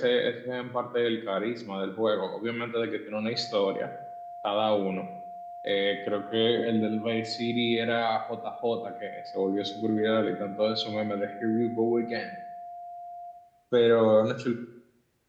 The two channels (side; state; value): both; identical; correlation 1.00